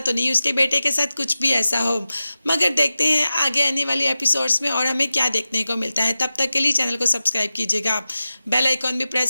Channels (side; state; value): both; inverted; correlation -0.95